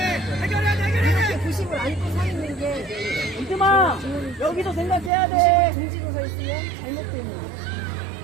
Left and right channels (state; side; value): drops out; left; at 5.1 s